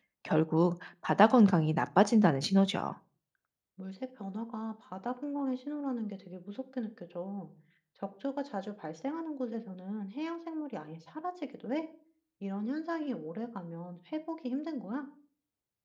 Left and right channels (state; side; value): identical; both; correlation 1.00